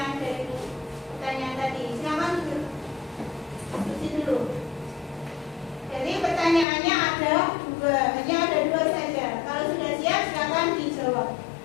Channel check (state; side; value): drops out; right; at 6.7 s